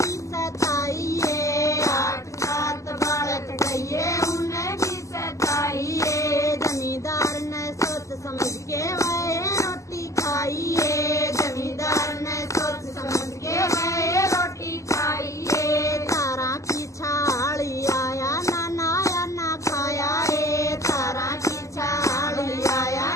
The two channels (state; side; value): late; right; 0.15 ms